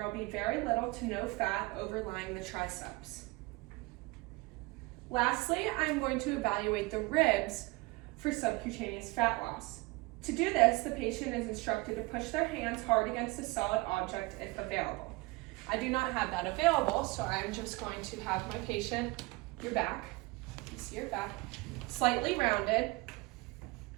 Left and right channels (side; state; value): left; quieter; 24.0 dB